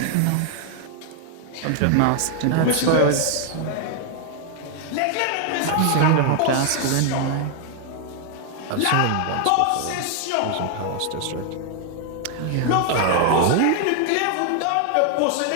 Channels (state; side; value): different; both; correlation 0.00